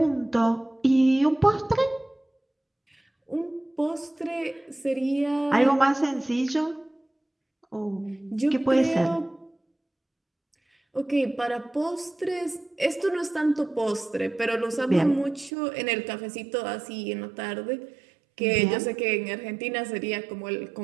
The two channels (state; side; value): drops out; left; at 15.5 s